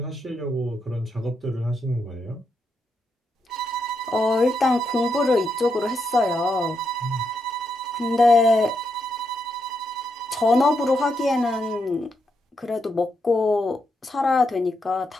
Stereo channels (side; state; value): both; normal; correlation 0.81